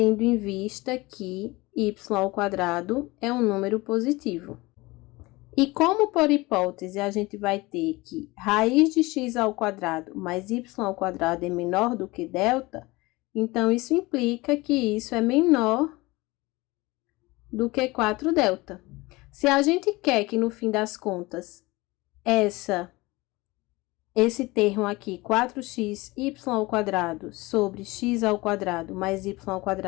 em vista que y ao quadrado é um número positivo. E como por hipótese a gente vai ter que raiz de x ao quadrado mais y ao quadrado é menor do que delta, então isso implica que isso é menor do que 4 delta. Se a gente quer que no fim das contas essa esse termo aqui, 4xy² sobre x² mais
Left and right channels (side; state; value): right; quieter; 22.0 dB